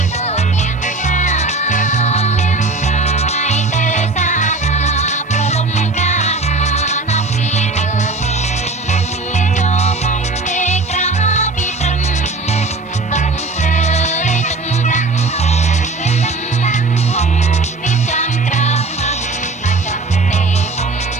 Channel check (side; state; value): left; quieter; 3.3 dB